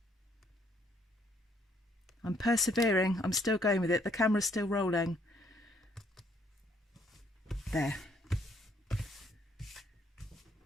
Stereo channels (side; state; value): both; normal; correlation 0.67